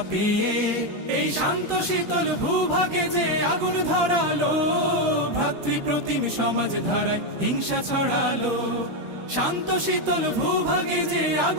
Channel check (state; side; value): late; left; 13 ms